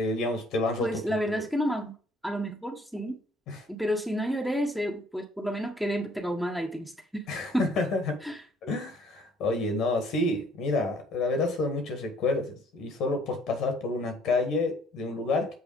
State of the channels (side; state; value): both; normal; correlation 0.61